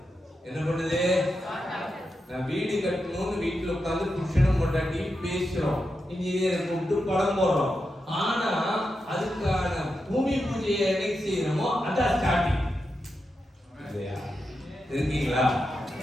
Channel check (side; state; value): both; normal; correlation 0.88